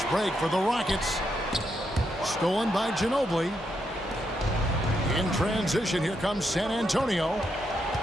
break for the Rockets. Stolen by Ginobili. In transition, here comes San Antonio.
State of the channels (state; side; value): normal; both; correlation 0.81